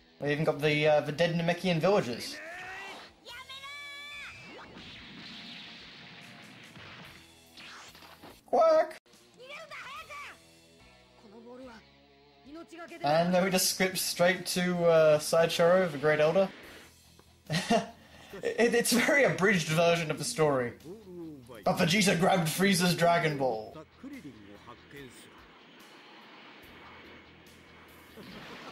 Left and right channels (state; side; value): identical; both; correlation 1.00